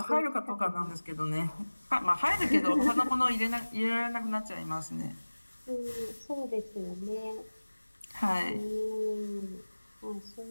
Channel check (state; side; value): inverted; both; correlation -1.00